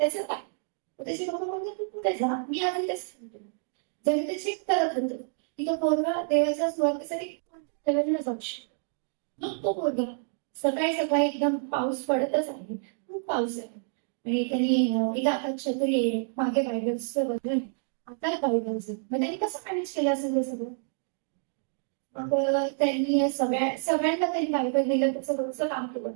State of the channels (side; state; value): left; silent; digital silence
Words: काय? त्याचे पप्पा बोलतो तू कुठे जा, मी आधी तेच सांगतो. जेव्हा ते चेक करत होतं की तो पोरगा देवाच्या सुवार्तेसाठी कोणत्या लेवलला जाऊ शकतो. मग तो पोरगा सकाळी एकदम पाऊस पडतच आहे, खूप पाऊस आहे आणि त्यांनी एका हातात छत्री आहे, मागे बायबल्सचं वजन, आता बायबल्स. मग त्यांनी कसं मॅनेज केलं असेल ते सगळं. मग त्यांनी सगळ्यांना त्यांनी बायबल दिलं, त्याचं रोजचं काम केलं.